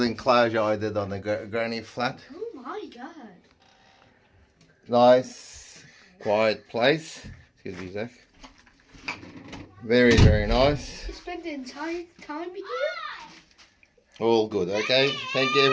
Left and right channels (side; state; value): both; identical; correlation 1.00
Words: enclosure I did on the granny flat. Oh my god. Nice, quiet place. Excuse me, Zach. Very, very nice. You spent the entire time here? All good, okay? Thank you,